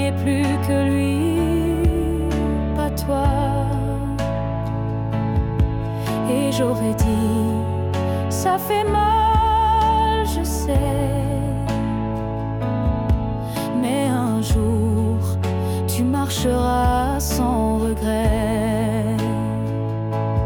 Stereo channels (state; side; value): identical; both; correlation 1.00